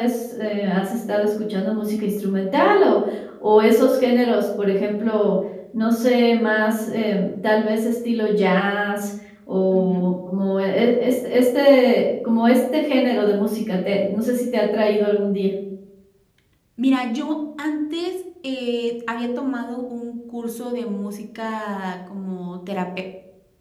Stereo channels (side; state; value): both; identical; correlation 1.00